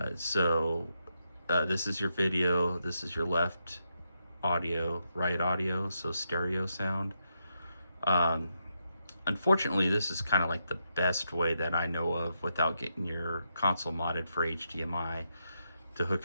So this is your video, this is your left audio, right audio, so stereo sound. Unfortunately, this is kind of like the best way that I know of without getting your console modded for HDMI to hook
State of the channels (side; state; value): both; inverted; correlation -0.83